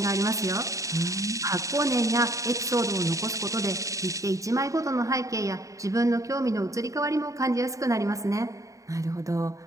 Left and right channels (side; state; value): left; late; 0.16 ms